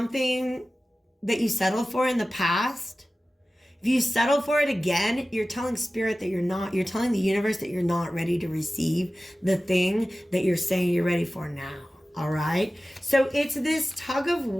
that you settled for in the past, if you settle for it again, you're telling spirit that you're telling the universe that you're not ready to receive the thing that you're saying you're ready for now. All right. So it's this tug of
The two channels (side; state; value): both; normal; correlation 0.96